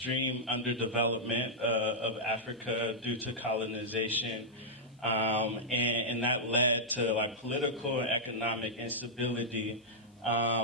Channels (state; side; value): normal; both; correlation -0.08